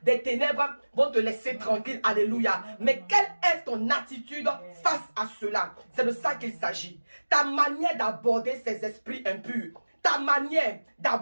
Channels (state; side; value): inverted; both; correlation -1.00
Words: des ténèbres vont te laisser tranquille. Alléluia. Mais quelle est ton attitude face à cela? C'est de ça qu'il s'agit. Ta manière d'aborder ces esprits impurs, ta manière